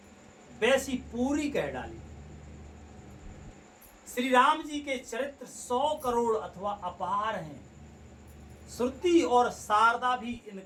वैसी पूरी कह डाली। श्री राम जी के चरित्र 100 करोड़ अथवा अपार हैं। श्रुति और शारदा भी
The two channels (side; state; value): both; identical; correlation 1.00